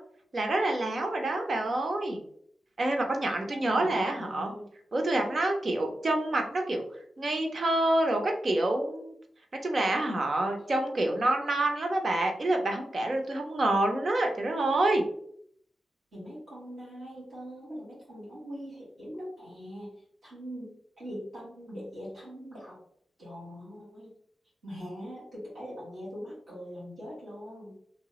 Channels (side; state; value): both; normal; correlation 0.89